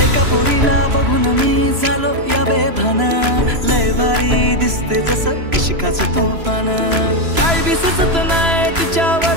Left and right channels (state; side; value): late; left; 3.0 ms